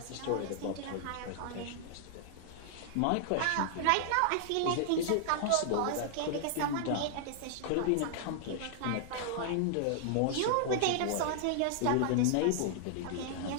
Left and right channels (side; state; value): both; different; correlation -0.01